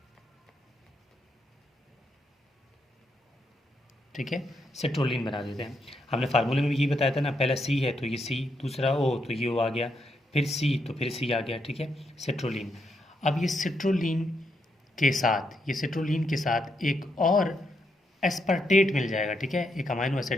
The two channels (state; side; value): normal; both; correlation 0.79